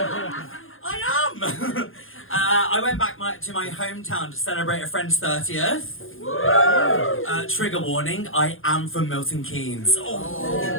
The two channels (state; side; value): late; right; 0.59 ms